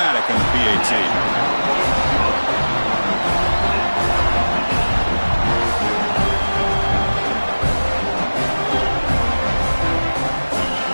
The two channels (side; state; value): both; inverted; correlation -1.00